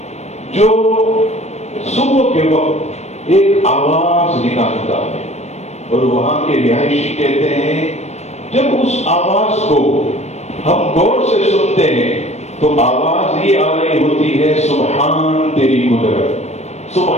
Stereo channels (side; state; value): right; late; 0.32 ms